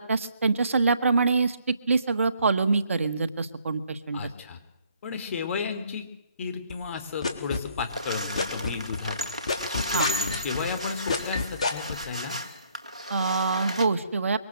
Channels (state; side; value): inverted; both; correlation -0.65